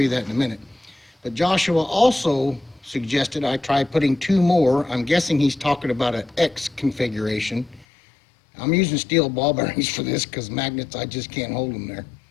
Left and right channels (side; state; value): right; drops out; at 7.9 s